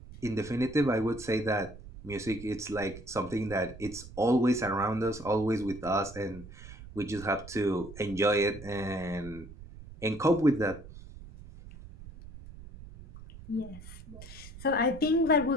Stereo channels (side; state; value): right; noise; rumble, 16 dB below the sound